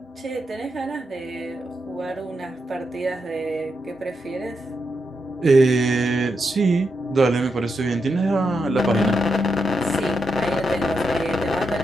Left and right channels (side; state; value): both; normal; correlation 0.84